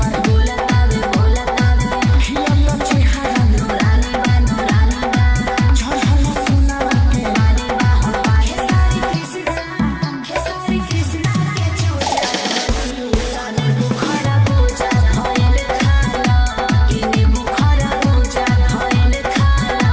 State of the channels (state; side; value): identical; both; correlation 1.00